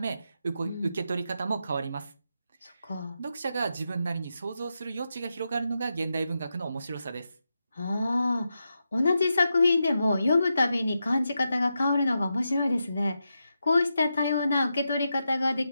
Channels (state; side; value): inverted; both; correlation -0.87